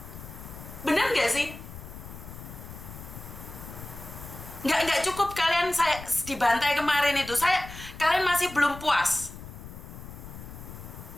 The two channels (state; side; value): noise; left; rumble, 13 dB below the sound